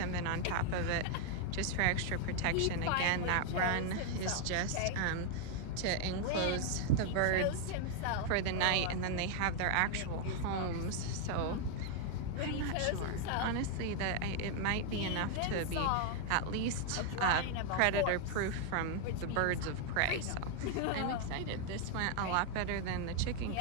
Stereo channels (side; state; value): both; different; correlation 0.00